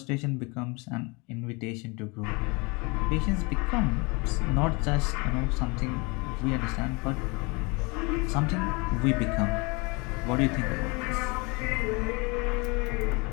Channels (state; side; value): quieter; right; 28.4 dB